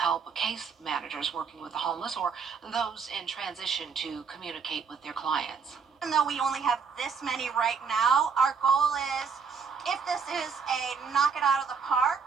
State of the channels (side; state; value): left; quieter; 5.9 dB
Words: case managers working with the homeless or those in transition to communicate with their clients. Even though we only have this many right now, our goal is, if this is a knock it out of the park,